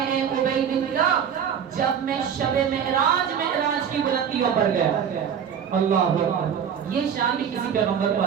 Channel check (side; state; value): left; quieter; 8.0 dB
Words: اے ابی بن کعب، جب میں شب معراج کی بلندیوں پر گیا. اللہ اکبر، یہ شان بھی کسی پیغمبر کو